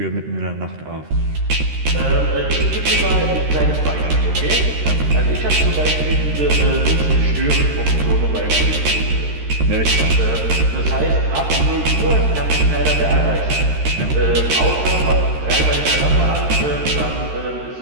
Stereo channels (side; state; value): left; late; 13 ms